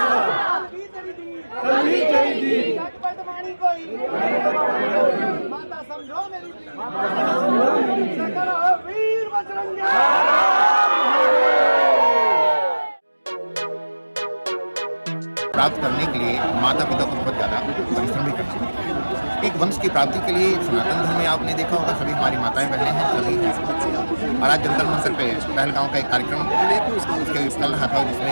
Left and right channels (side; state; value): both; inverted; correlation -1.00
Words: कल भी तेरी दीन, कल भी तेरी दीन, बदमानी कोई, माता समझो मेरी दीन, शंकर हो वीर बजरंगी। प्राप्त करने के लिए माता पिता को बहुत ज़्यादा परिश्रम भी करना पड़ता है। एक वंश की प्राप्ति के लिए सनातन धर्म में आपने देखा होगा सभी हमारी माताएं बहनें हैं, सभी हैं। और आज जंतर मंतर पे पहलगांव का एक कार्यक्रम उसके चल रहा था